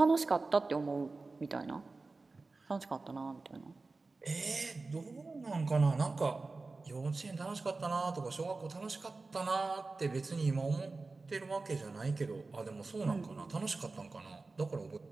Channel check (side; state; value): left; quieter; 3.7 dB